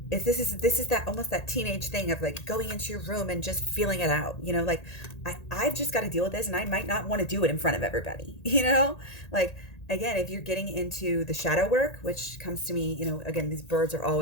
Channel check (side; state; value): right; late; 1.8 ms